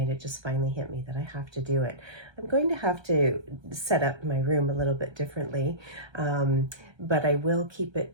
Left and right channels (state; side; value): late; left; 1.3 ms